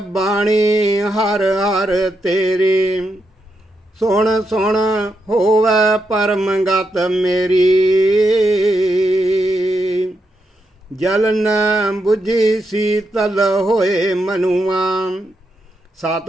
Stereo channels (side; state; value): both; normal; correlation 0.83